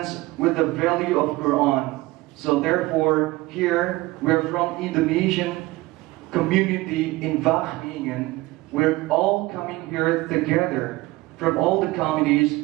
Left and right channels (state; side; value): quieter; left; 20.0 dB